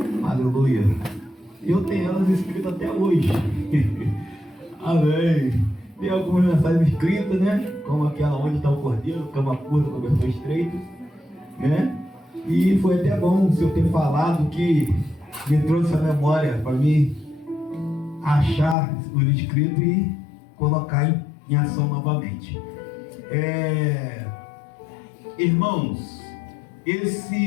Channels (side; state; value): right; drops out; at 18.8 s